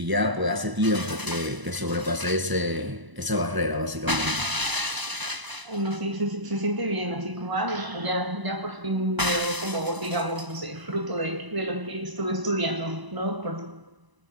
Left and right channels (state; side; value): late; left; 1.0 ms